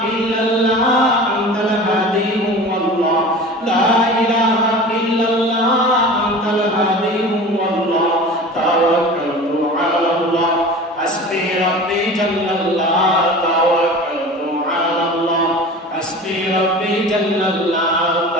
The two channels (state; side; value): normal; both; correlation 0.37